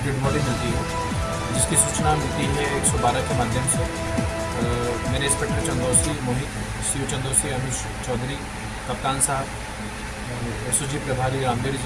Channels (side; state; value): both; identical; correlation 1.00